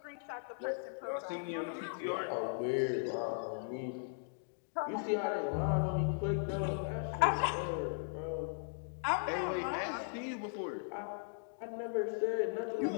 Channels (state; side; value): silent; right; digital silence